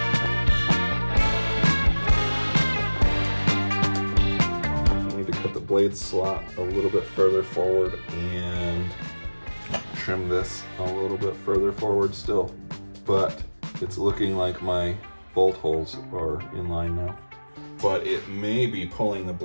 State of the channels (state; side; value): inverted; both; correlation -1.00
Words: blade slot a little bit further forward and trim this a little bit further forward still. But it's looking like my bolt holes are in line now. But it may be pulling the